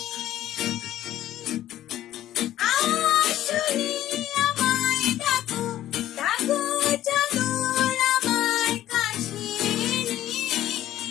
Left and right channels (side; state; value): right; quieter; 13.1 dB